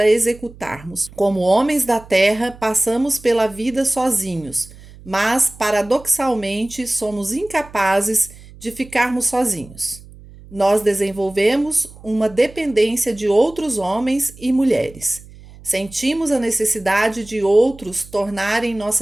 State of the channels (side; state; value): right; noise; hum, 20 dB below the sound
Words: executarmos. Como homens da terra, passamos pela vida sozinhos, mas, paradoxalmente, somos incapazes de ficarmos sozinhos. Nós desenvolvemos uma dependência de outros homens e mulheres. Sentimos a necessidade de outros tornarem